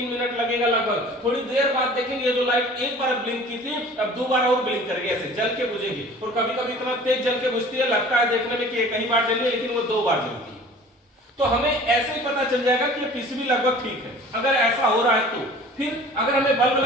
मिनट लगेगा लगभग। थोड़ी देर बाद देखेंगे जो लाइट एक बार ब्लिंक की थी अब 2 बार और ब्लिंक करेगी, ऐसे जल के बुझेगी। और कभी कभी इतना तेज जल के बुझती है लगता है देखने में कि एक ही बार जली है, लेकिन वो 2 बार जलती है। तो हमें ऐसे ही पता चल जाएगा कि ये पीसीबी लगभग ठीक है अगर ऐसा हो रहा है तो। फिर अगर हमें बल्ब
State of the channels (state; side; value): normal; both; correlation 0.46